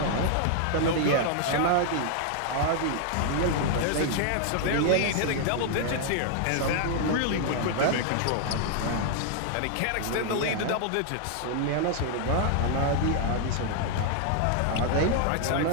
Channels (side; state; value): both; different; correlation 0.00